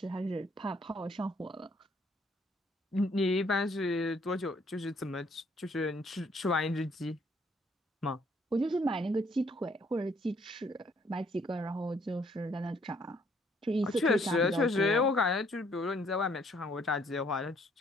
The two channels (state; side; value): normal; both; correlation 0.65